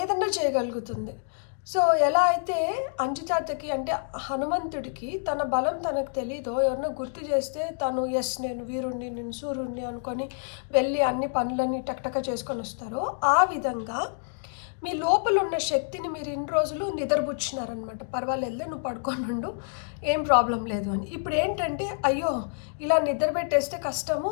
చేయగలుగుతుంది. సో ఎలా అయితే అంజితాతకి అంటే హనుమంతుడికి తన బలం తనకు తెలీదో, ఎవరినో గుర్తు చేస్తే తను నేను వీరుణ్ణి, నేను సూర్యుడిని అనుకొని వెళ్ళి అన్ని పనులని టక్టక చేసుకొని వస్తారో, ఆ విధంగా మీ లోపల ఉన్న శక్తిని మీరు ఇన్ని రోజులు నిద్రపుచ్చినారనమాట. పర్వాలేదులే, నువ్వు పడుకోనుండు, ఏం ప్రాబ్లం లేదు అని. ఇప్పుడు ఏంటంటే అయ్యో ఇలా నిద్ర పెట్టేస్తే కష్టము,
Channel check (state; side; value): silent; right; digital silence